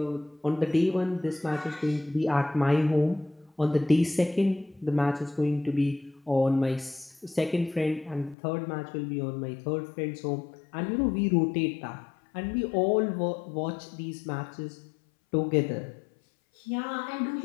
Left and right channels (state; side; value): drops out; right; at 8.3 s